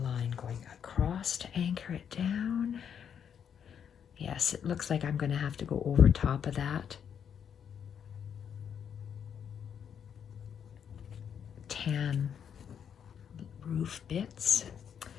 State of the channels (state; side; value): quieter; right; 8.0 dB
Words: line going across to anchor it down. Yes, it looks like I'm going to have to go over top of that. Tan roof bits.